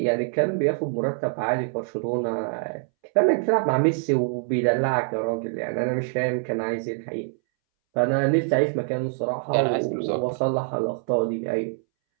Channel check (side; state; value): left; silent; 62 dB below the other